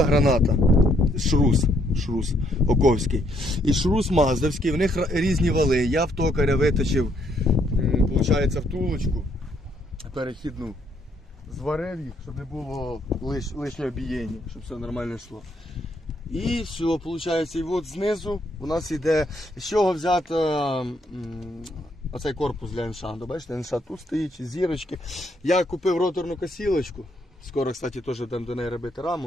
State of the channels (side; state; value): both; normal; correlation 0.71